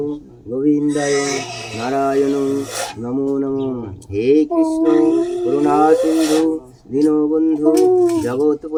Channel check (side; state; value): both; identical; correlation 1.00